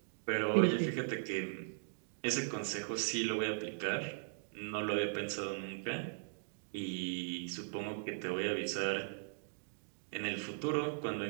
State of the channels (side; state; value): left; silent; digital silence